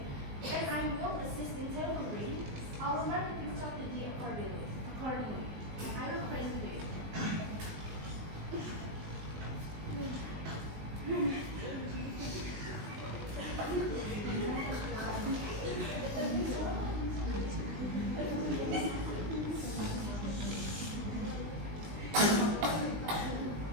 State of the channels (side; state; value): left; late; 19 ms